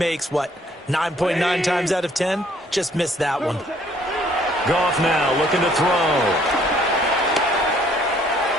9.9 times out of 10? Just missed that one. Goff now looking to throw.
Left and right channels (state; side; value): normal; both; correlation 0.62